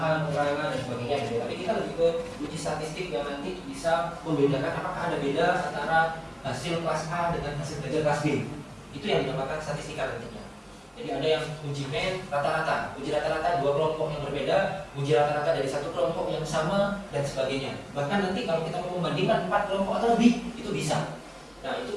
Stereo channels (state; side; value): identical; both; correlation 1.00